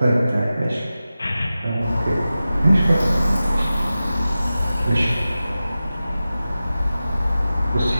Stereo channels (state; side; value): inverted; both; correlation -0.94